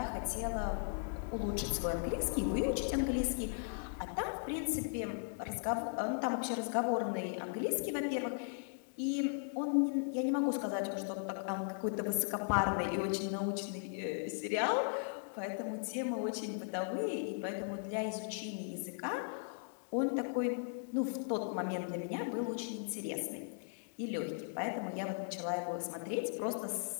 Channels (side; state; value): right; silent; digital silence